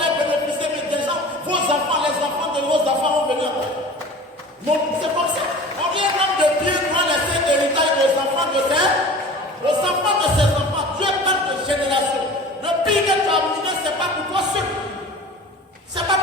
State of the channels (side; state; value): both; normal; correlation 0.40